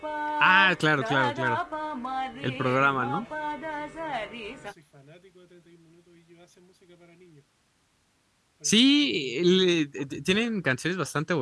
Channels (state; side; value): identical; both; correlation 1.00